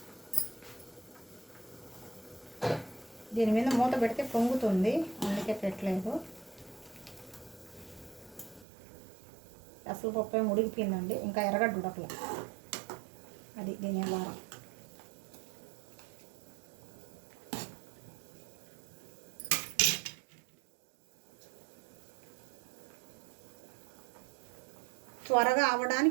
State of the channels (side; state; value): left; drops out; at 8.7 s